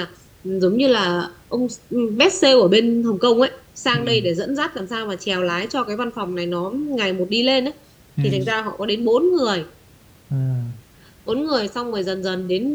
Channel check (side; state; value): both; identical; correlation 1.00